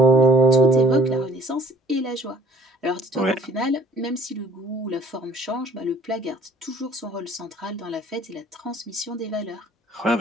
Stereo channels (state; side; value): normal; both; correlation 0.56